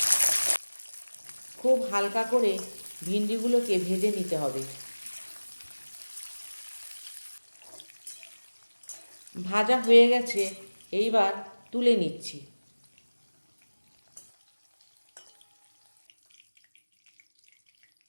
খুব হালকা করে ভিন্ডিগুলোকে ভেজে নিতে হবে। ভাজা হয়ে গেছে, এইবার তুলে নিচ্ছি।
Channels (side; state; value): both; inverted; correlation -1.00